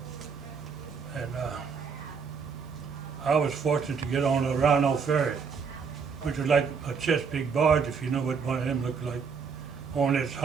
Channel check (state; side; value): quieter; left; 5.8 dB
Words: And I was fortunate to get on a Rhino ferry, which was like a Chesapeake barge, if you know what one of them looked like. Only it's